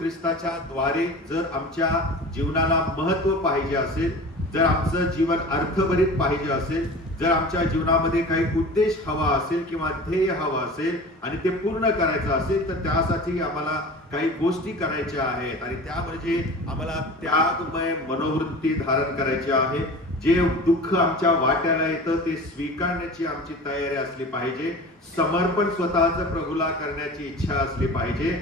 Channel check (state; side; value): normal; both; correlation 0.37